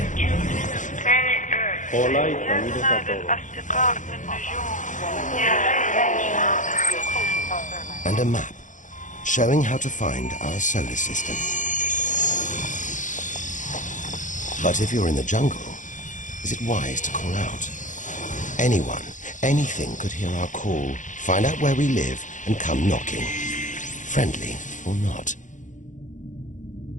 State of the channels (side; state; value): right; late; 0.37 ms